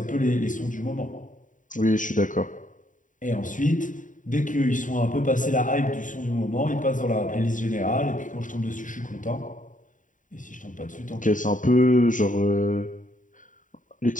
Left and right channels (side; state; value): right; late; 0.38 ms